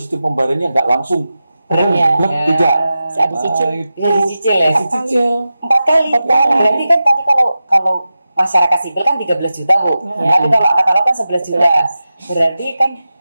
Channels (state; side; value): inverted; both; correlation -0.93